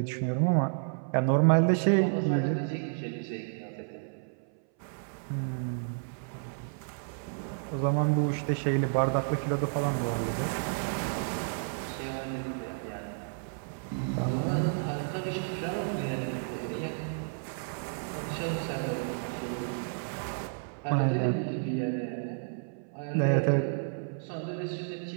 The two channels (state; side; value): silent; left; 57 dB below the other